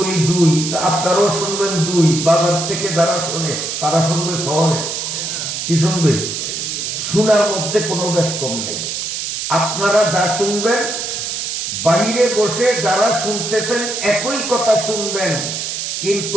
দুই, আপনারাও শুনবেন দুই। বাজার থেকে যারা শোনে তারা শুনবে শহরে। কি শুনবে? শোনার মধ্যে কোনো বেশ কম নেই। আপনারা যা শুনবেন, বাইরে বসে যারা শুনতেছেন একই কথা শুনবেন,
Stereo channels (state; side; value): noise; right; hiss, 4 dB below the sound